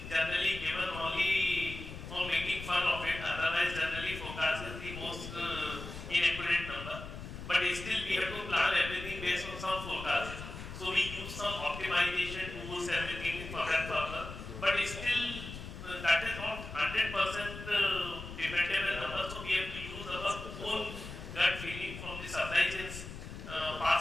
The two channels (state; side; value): noise; left; rumble, 10 dB below the sound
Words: generally given only for making fun of it. Otherwise, generally forecast is the most inaccurate number. But still, we have to plan everything based on some forecast. So we use some optimization tools, everything for that purpose. But still, that is not 100% dependable number. So we have to use our own gut feeling from the supply chains,